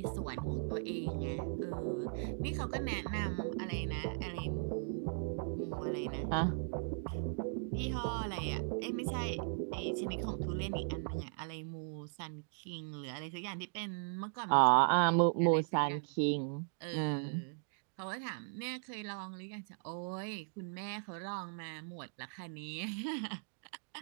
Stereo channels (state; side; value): silent; left; digital silence